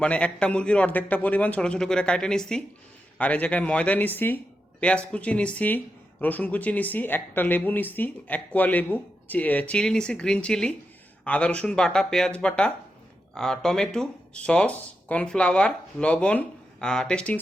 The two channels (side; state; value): both; normal; correlation 0.87